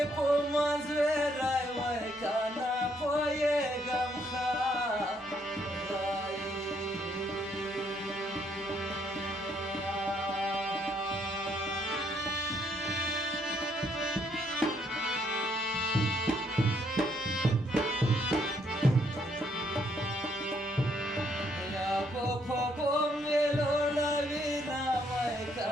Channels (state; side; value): normal; both; correlation 0.70